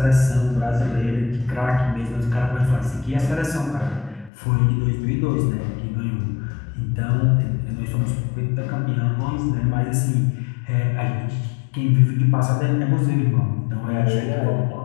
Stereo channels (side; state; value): right; drops out; at 4.3 s